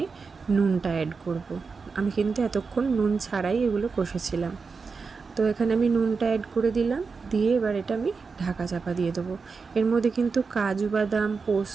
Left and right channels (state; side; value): quieter; left; 4.9 dB